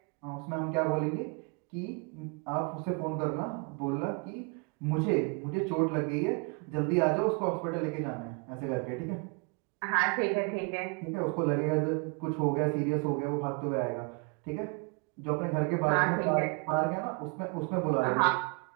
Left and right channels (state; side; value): quieter; left; 33.3 dB